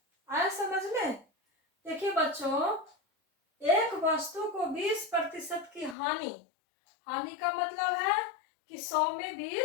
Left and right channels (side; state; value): right; drops out; at 6.0 s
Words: आया समझ में? देखिए बच्चों, एक वस्तु को 20% की हानि का मतलब है कि 100 में